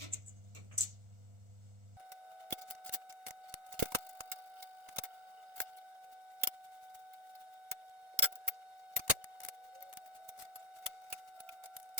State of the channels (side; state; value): left; late; 1.4 ms